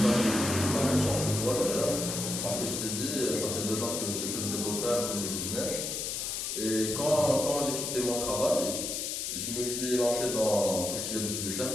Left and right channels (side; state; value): left; noise; hiss, 3 dB below the sound